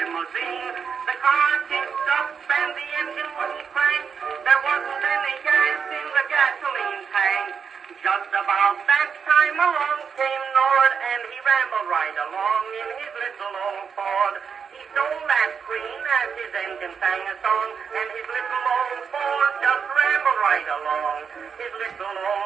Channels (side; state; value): left; quieter; 6.5 dB